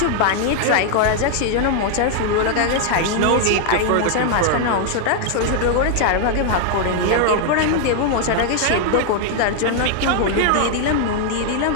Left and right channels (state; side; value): different; both; correlation 0.00